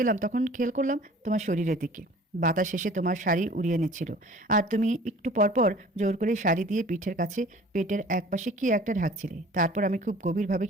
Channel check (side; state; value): both; normal; correlation 0.48